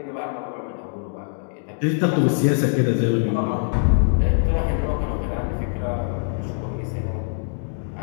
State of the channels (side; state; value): right; silent; digital silence